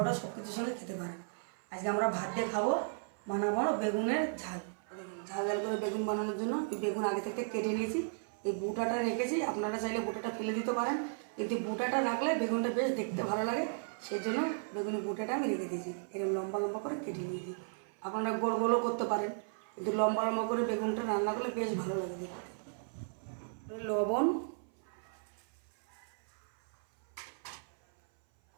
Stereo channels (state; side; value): silent; left; 54 dB below the other